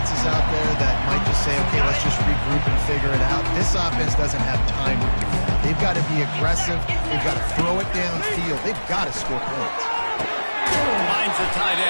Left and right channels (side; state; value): both; inverted; correlation -1.00